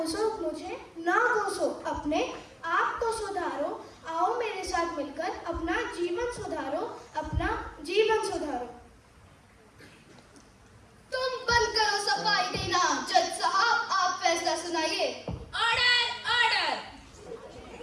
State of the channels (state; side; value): identical; both; correlation 1.00